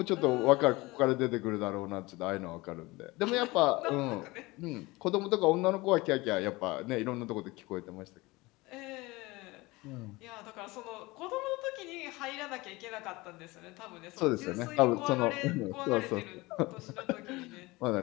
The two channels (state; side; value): quieter; right; 22.0 dB